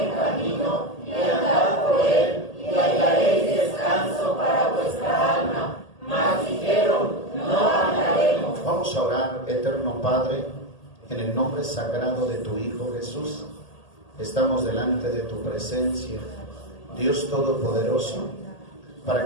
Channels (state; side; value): late; right; 1.8 ms